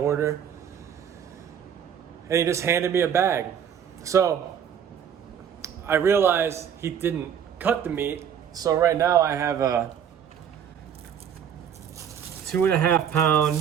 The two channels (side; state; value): left; quieter; 8.5 dB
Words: And he just handed me a bag. So I realized he didn't cut the meat. So right now I have a 2.5